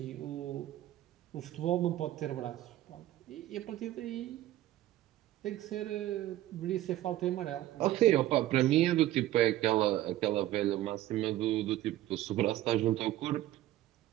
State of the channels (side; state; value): left; quieter; 14.5 dB